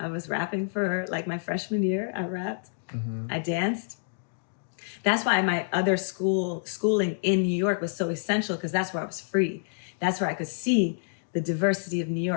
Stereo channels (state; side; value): silent; right; digital silence